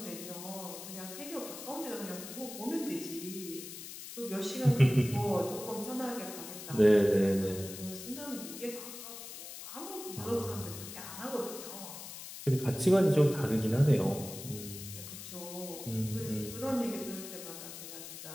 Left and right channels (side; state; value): left; noise; hiss, 11 dB below the sound